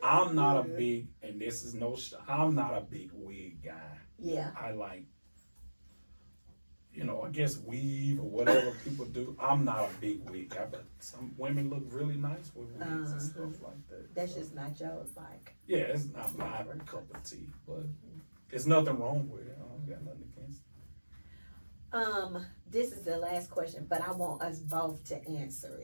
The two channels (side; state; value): both; inverted; correlation -1.00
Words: I'm not a good. big, and this is no. I'm not a big wig guy. Yeah. I like, I guess weave or whatever people do. I'm not a big wig guy, but some women look really nice with wigs and stuff like that. That's So, just not yours, like. yeah, it's not my cup of tea, but there's nothing wrong with it. I don't got nothing against it. This is the last question, but I want us both to answer